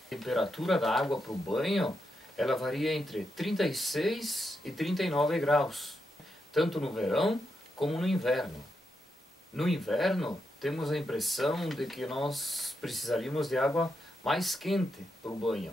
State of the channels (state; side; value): normal; both; correlation 0.84